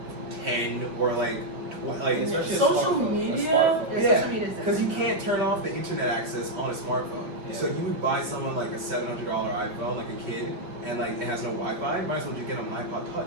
10 or like like. Especially a Social smartphone, a media? smartphone. Yeah, social media is Because you different. can't turn off the internet access on a smartphone. Yeah. So you would buy someone like a $700 iPhone, like a kid, and like it has no Wi-Fi. Might as well just get them an iPod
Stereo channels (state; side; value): late; left; 5.0 ms